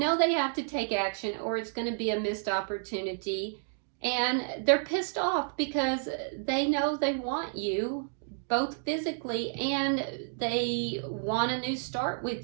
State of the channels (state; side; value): silent; left; digital silence